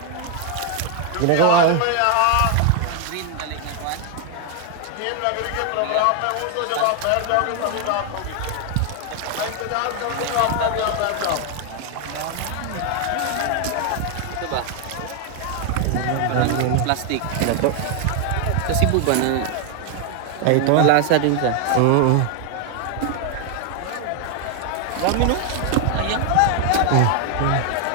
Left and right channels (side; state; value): both; different; correlation 0.00